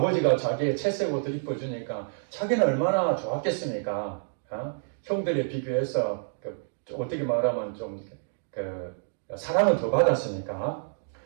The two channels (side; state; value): left; silent; digital silence